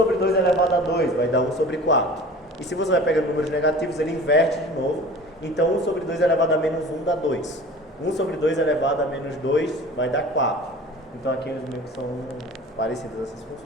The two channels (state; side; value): normal; both; correlation 0.41